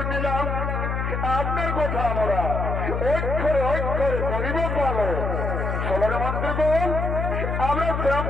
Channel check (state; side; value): noise; left; hum, 1 dB below the sound